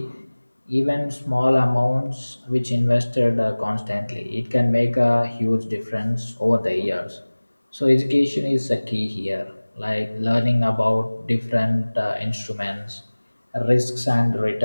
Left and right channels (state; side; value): inverted; both; correlation -1.00